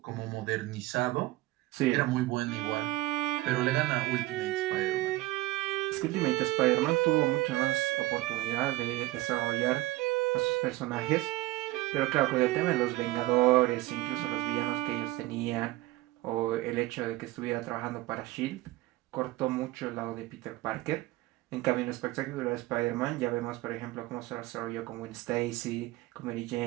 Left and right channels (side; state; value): left; quieter; 18.4 dB